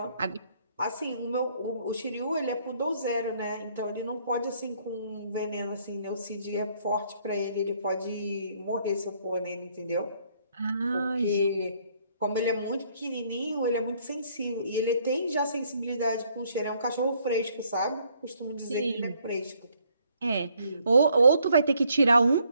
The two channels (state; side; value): inverted; both; correlation -0.67